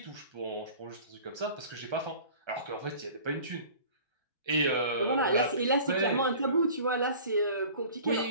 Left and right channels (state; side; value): inverted; both; correlation -0.44